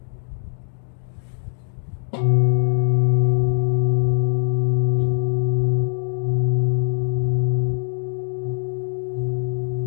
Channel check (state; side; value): silent; right; digital silence